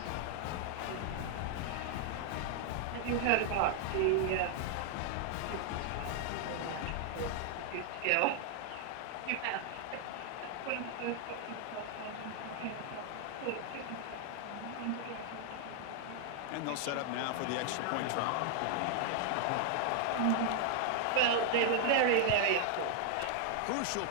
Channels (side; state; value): both; different; correlation 0.00